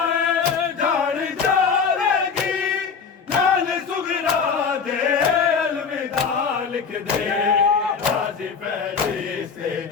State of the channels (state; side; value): quieter; right; 5.9 dB